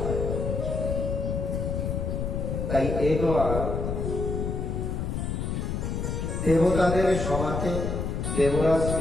তাই একবার দেবতাদের সভাতে দেবরাজ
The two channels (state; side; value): noise; left; rumble, 2 dB below the sound